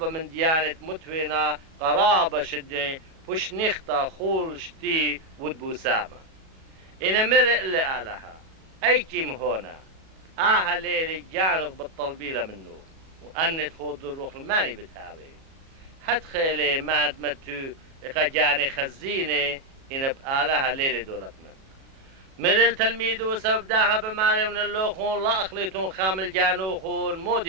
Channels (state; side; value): late; left; 37 ms